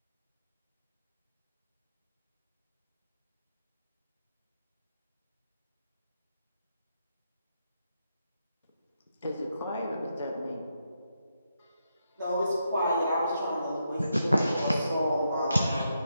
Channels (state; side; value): inverted; both; correlation -0.82